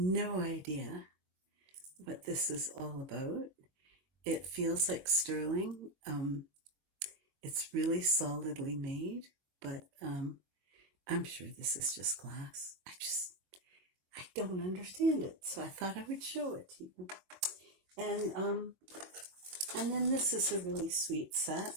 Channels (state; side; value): late; left; 22 ms